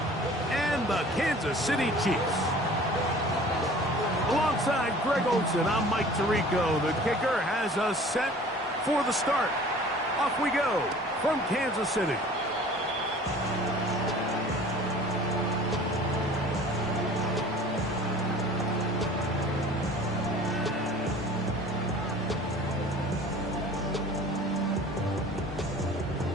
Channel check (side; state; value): both; normal; correlation 0.46